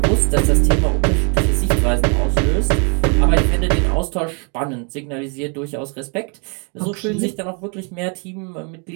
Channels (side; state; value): left; quieter; 36.3 dB